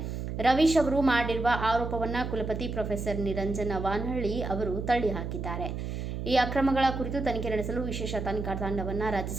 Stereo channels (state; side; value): noise; right; hum, 5 dB below the sound